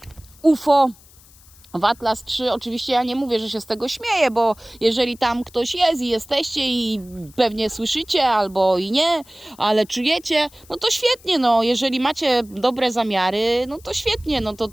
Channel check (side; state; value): left; noise; hiss, 26 dB below the sound